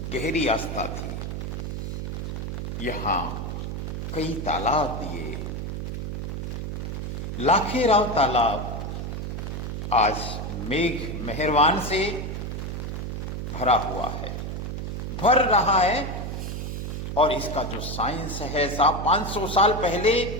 गहरी आस्था थी। यहां कई तालाब दिए। लाखेराव तालाब आज मेघ मेहरबान से भरा हुआ है, भर रहा है। और इसका जो साइंस है साहब, 500 साल पहले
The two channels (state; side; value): noise; right; hum, 4 dB below the sound